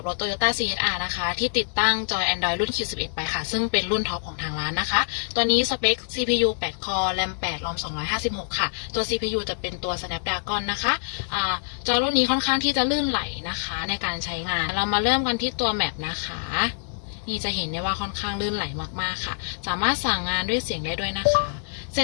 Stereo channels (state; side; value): silent; right; digital silence